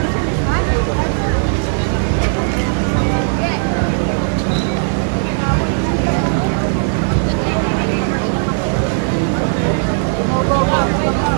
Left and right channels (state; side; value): silent; left; 69 dB below the other